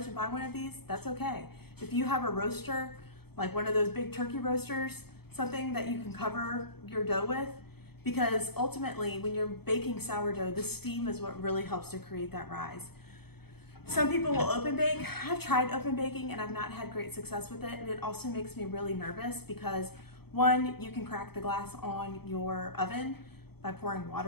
and buy one of these, that's okay. If you have a roaster, like one of those big turkey roasters, something that you can cover your dough with, because ultimately when you're baking sourdough, the steam is what really helps to create that rise. Some people will open bake. I've tried open baking and I've not had great success with it. And it also makes me really nervous because one, you can crack the glass on your oven by pouring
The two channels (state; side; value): late; right; 0.97 ms